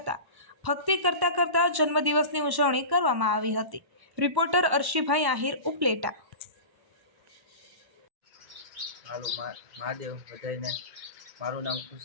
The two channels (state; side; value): late; left; 1.1 ms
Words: ભક્તિ કરતા જન્મદિવસની ઉજવણી કરવામાં આવી હતી. રિપોર્ટર અર્શીભાઈ આહિર, ઉપલેટા. હાલો મહાદેવ બધાને. મારું નામ